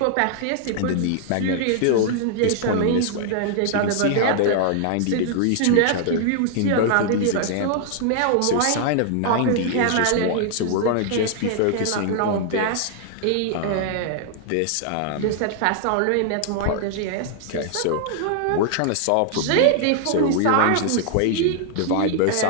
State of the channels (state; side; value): different; both; correlation 0.00